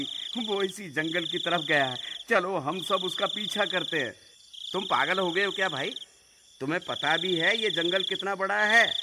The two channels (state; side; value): identical; both; correlation 1.00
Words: वो इसी जंगल की तरफ गया है, चलो हम सब उसका पीछा करते हैं। तुम पागल हो गए हो क्या भाई? तुम्हें पता भी है ये जंगल कितना बड़ा है,